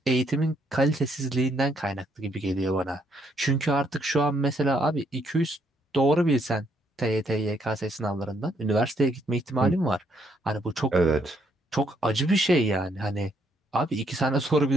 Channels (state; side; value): normal; both; correlation 0.72